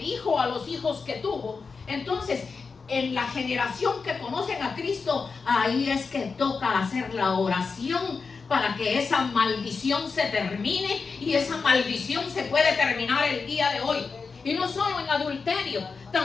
hijo a los hijos que tuvo, entonces en la generación que conocen a Cristo, ahí es que toca hacer la oración para que esa maldición se termine, y esa maldición se puede terminar el día de hoy. Y no solo en adulterio,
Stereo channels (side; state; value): right; quieter; 4.9 dB